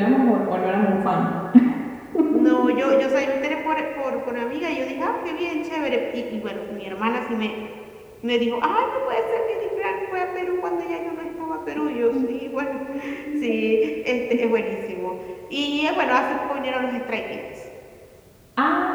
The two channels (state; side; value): identical; both; correlation 1.00